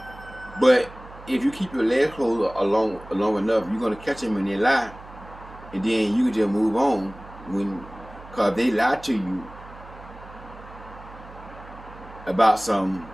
But if you keep your legs closed long enough, you're gonna catch them when they lie, and then you can just move on. Cause they lie to you about something,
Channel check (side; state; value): right; noise; hum, 18 dB below the sound